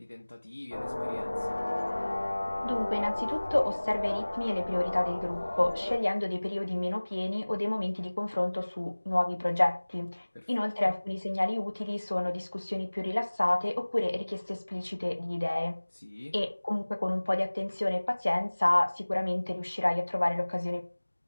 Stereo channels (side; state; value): both; inverted; correlation -1.00